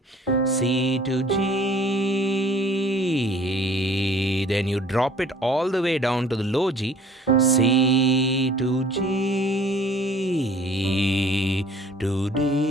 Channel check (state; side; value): normal; both; correlation 0.53